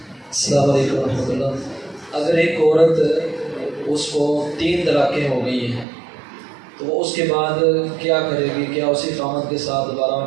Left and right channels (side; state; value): left; drops out; at 5.9 s